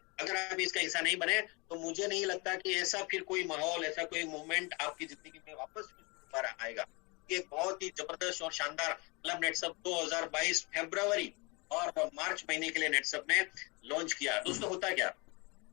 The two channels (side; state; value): right; quieter; 28.5 dB